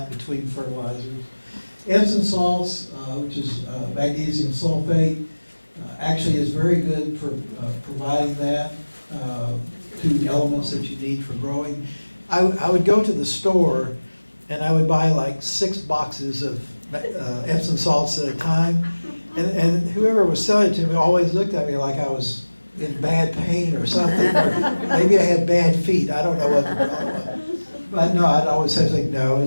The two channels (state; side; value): inverted; both; correlation -1.00